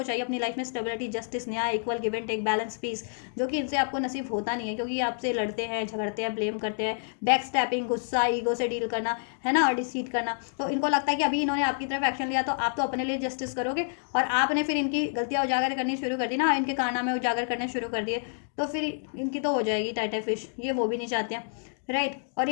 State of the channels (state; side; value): silent; right; digital silence